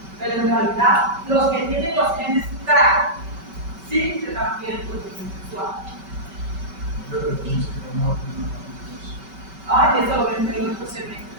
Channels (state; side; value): late; left; 5.2 ms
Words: Pero en realidad, los que tienen los genes TRAC sí se transfieren por transmisión sexual. Ay, eso lo ven en otro